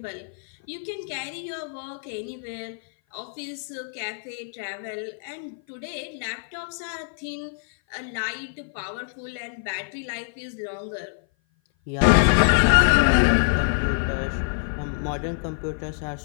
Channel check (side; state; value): right; silent; 56 dB below the other